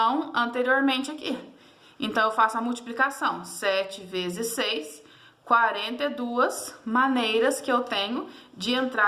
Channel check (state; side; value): identical; both; correlation 1.00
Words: anteriormente aqui. Então, eu faço a multiplicação. 7 vezes 6, 42 maneiras que eu tenho de